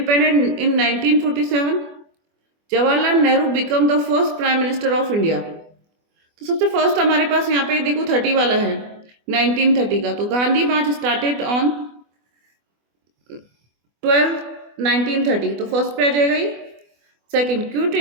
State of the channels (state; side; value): late; left; 24 ms